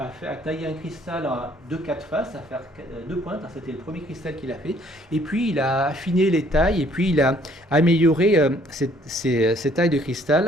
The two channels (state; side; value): normal; both; correlation 0.62